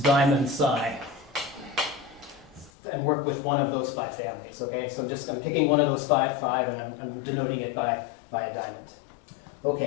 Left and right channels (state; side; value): drops out; right; at 2.7 s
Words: diamond psi. And work with one of those 5 families, okay? So I'm picking one of those 5, and I'm denoting it by a diamond.